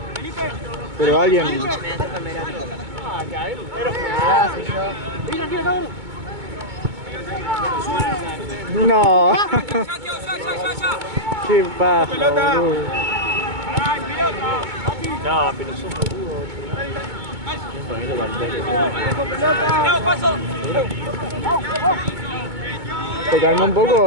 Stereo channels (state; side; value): late; left; 2.2 ms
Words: Pero alguien... Me toca en verano. No. Qué paja, boludo. No, pero son boludos. ¿Te calmó un poco